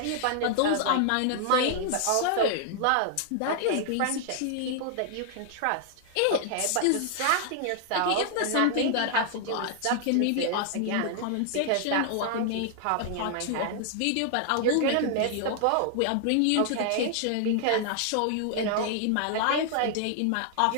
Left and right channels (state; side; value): different; both; correlation 0.00